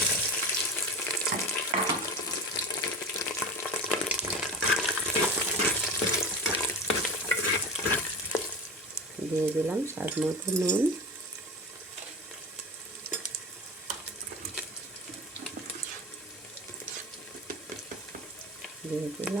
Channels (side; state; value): both; normal; correlation 0.29